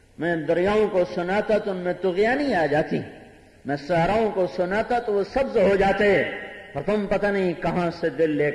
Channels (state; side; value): identical; both; correlation 1.00